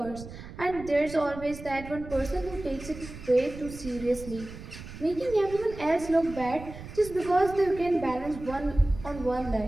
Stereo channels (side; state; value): right; noise; rumble, 13 dB below the sound